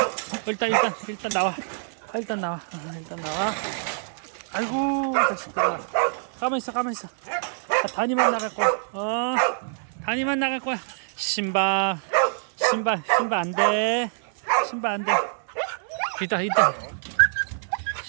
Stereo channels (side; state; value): left; silent; 56 dB below the other